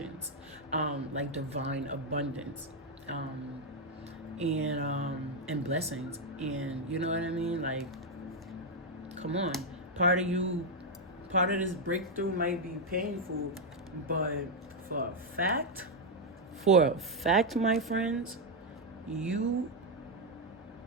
like divine abundance, and blessings. And you know what I mean? Like, come on, part of this breakthrough might be painful, but for a fact, my friends, you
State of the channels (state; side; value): normal; both; correlation 0.02